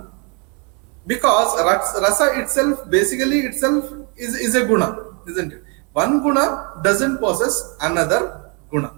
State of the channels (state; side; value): quieter; left; 34.6 dB